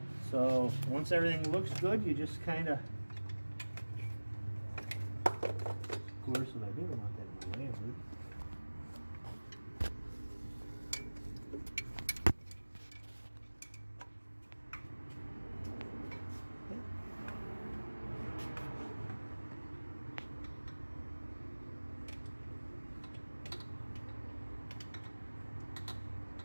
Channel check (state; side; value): inverted; both; correlation -1.00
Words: So once everything looks good, you just kind of, course, what I didn't want that in my way, dude.